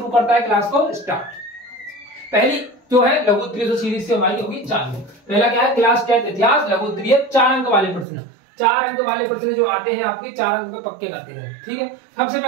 करता है क्लास को स्टार्ट। पहली जो है लघु उत्तरीय जो सीरीज से हमारी होगी चालू। पहला क्या है, क्लास 10 इतिहास लघु उत्तरीय 4 अंक वाले प्रश्न। 4 अंक वाले प्रश्न जो आते हैं आपके 4 अंक पे पक्के करते हैं। ठीक है, सबसे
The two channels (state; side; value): drops out; left; at 8.1 s